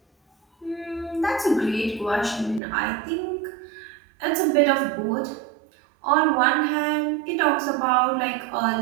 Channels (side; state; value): left; drops out; at 2.6 s